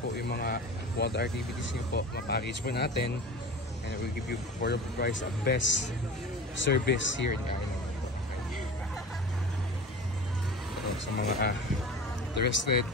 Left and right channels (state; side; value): normal; both; correlation 0.35